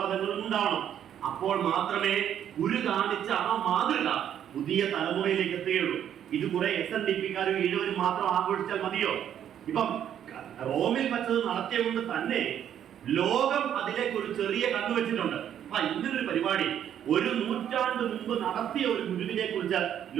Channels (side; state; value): left; quieter; 9.8 dB